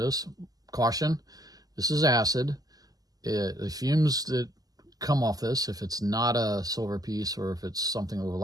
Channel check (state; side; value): late; left; 0.18 ms